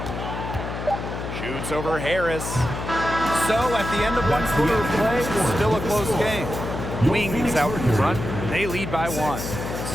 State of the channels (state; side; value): noise; left; hum, 6 dB below the sound